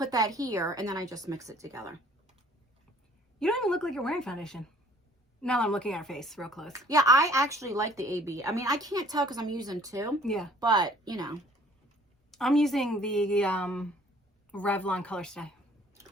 that here, and then I just mix it together. You don't even look like you're wearing foundation. Now that I'm looking at her face real close. Yeah, I actually like the AB. I mean, I can't tell because I'm using 2. Yeah. But, you know. I'm using the Revlon Color Stay.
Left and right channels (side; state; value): both; normal; correlation 0.55